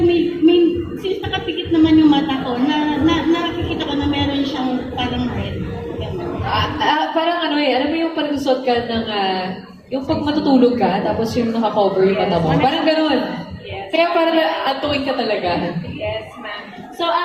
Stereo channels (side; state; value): both; identical; correlation 1.00